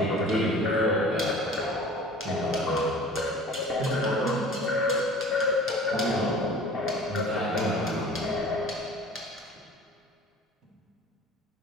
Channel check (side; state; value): both; normal; correlation 0.44